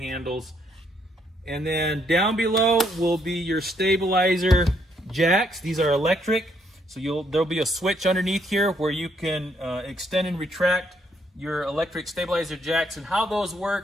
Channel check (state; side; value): normal; both; correlation 0.72